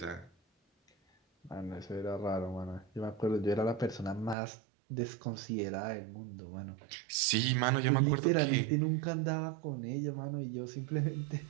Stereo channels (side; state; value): left; drops out; at 4.4 s